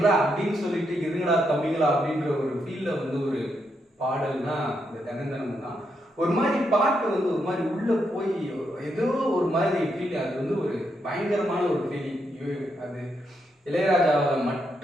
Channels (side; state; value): both; normal; correlation 0.80